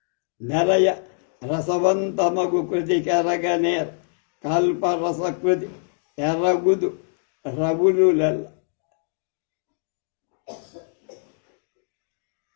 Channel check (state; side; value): silent; right; digital silence